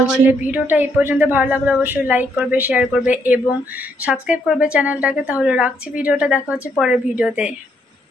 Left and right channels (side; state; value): both; normal; correlation 0.73